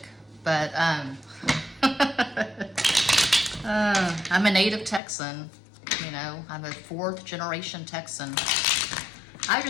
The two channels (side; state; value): right; drops out; at 5.0 s